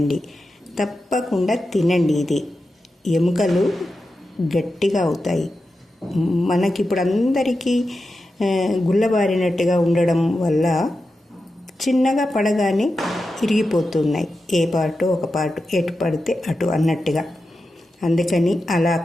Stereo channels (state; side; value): normal; both; correlation 0.90